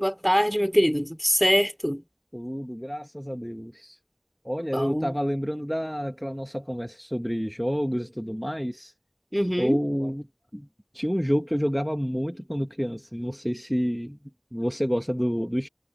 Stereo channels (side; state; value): both; identical; correlation 1.00